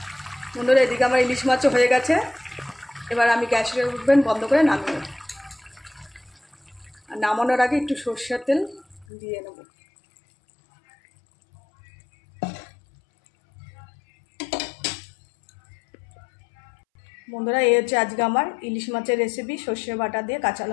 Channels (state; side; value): drops out; right; at 9.1 s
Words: বন্ধুরা, এদিকে আমার ইলিশ মাছও হয়ে গেছে। এবার আমি গ্যাসের ওভেন বন্ধ করে নামিয়ে নেব। আর নামানোর আগে একটু সরষের তেল দিয়ে নেব। বন্ধুরা, এই হচ্ছে আজকে আমার ইলিশ মাছের রেসিপি, সর্ষে বাটা দিয়ে কাঁচা